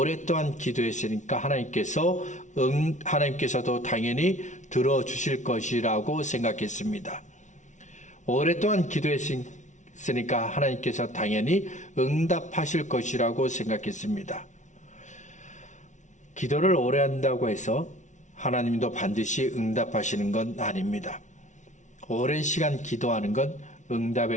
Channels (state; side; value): late; right; 0.36 ms